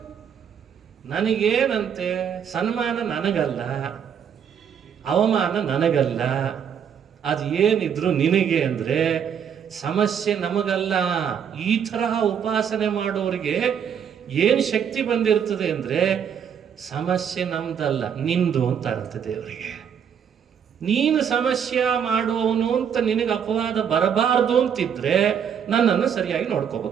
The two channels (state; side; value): quieter; left; 7.9 dB